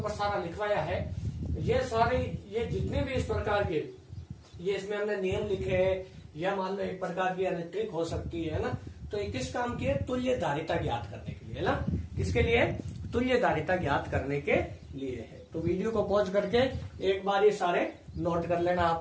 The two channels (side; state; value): both; identical; correlation 1.00